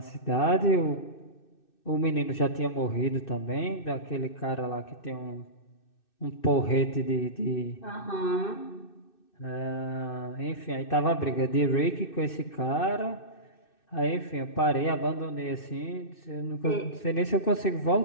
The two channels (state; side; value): late; right; 2.6 ms